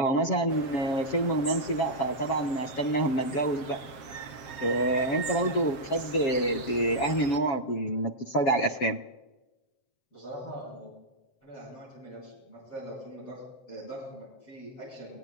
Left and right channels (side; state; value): right; late; 7.6 ms